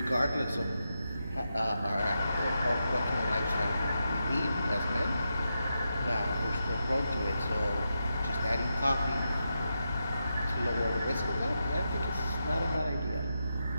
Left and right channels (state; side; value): inverted; both; correlation -0.87